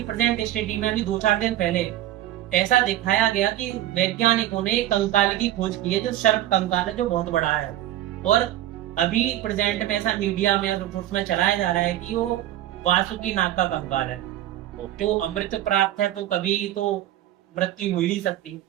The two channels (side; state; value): left; quieter; 13.5 dB